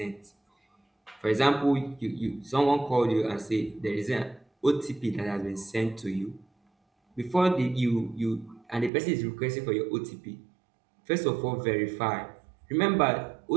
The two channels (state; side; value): drops out; left; at 8.9 s